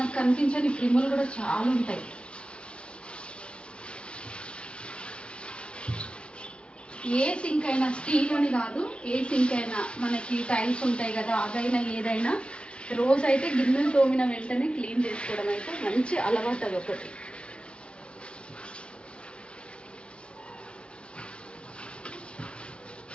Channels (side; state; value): right; late; 0.058 ms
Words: కనిపించని క్రిములు కూడా చాలా ఉంటాయి. ఏ సింక్ అయినా, స్టీల్ అని కాదు, ఏ సింక్ అయినా మనకి టైల్స్ ఉంటాయి కదా, అదైనా ఏదైనా రోజు అయితే గిన్నెలు తోమిన వెంటనే క్లీన్ చేసుకోవడం అయితే మంచి అలవాటు. అది ఒకటి.